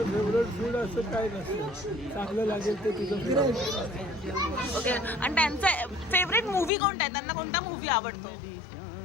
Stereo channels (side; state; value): right; drops out; at 6.7 s